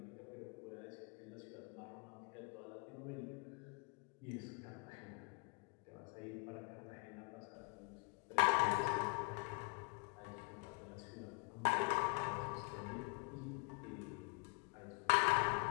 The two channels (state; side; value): quieter; right; 29.7 dB